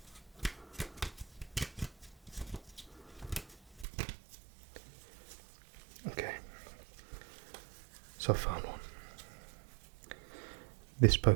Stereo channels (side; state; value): left; drops out; at 3.9 s